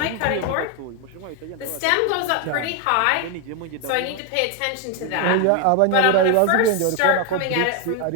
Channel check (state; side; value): different; both; correlation 0.01